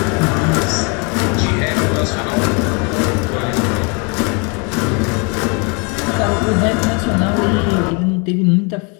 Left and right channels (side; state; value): right; quieter; 33.5 dB